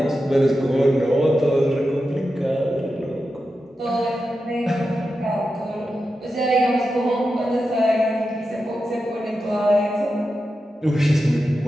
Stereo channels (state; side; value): normal; both; correlation 0.90